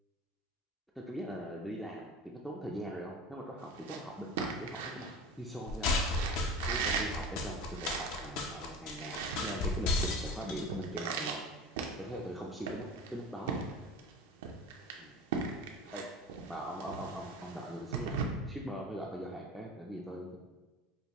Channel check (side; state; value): both; normal; correlation 0.35